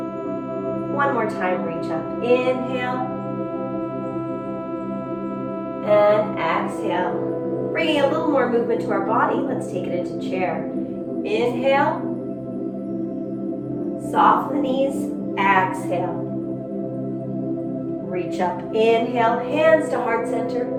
One more time, reach up. Inhale. And exhale. Bringing a little more movement to our body. Let's take it into chair. Inhale. Soften the knees. Exhale. Reach up. Inhale. Hands to heart center.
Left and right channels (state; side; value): identical; both; correlation 1.00